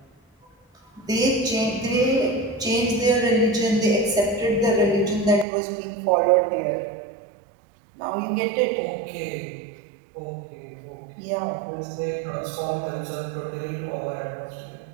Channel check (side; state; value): left; drops out; at 5.5 s